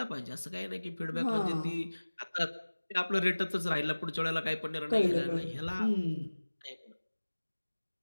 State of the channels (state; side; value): inverted; both; correlation -1.00